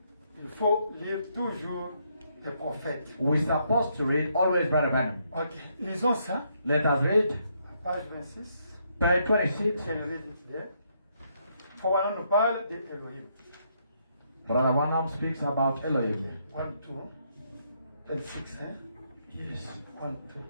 il faut lire toujours les prophètes. we're supposed to read always Brother Branham. Ok. Lisons ça. Let us read Page 26. page 26. C'est le rédacteur. Voilà, nous parle d'Elohim. Brother Branham speaks about Elohim. 1, 2, 26, hein? Yes. 1, 2.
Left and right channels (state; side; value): inverted; both; correlation -0.74